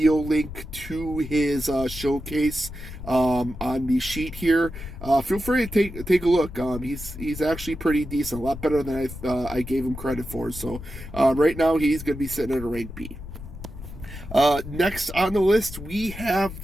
link to his showcase on the sheet here. Feel free to take a look. He's actually pretty decent, a lot better than I gave him credit for. So right now he's going to be sitting at a rank B. Next on the list, we have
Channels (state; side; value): noise; left; rumble, 11 dB below the sound